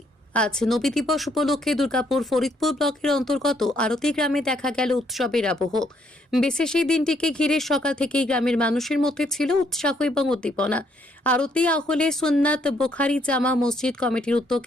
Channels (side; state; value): both; normal; correlation 0.70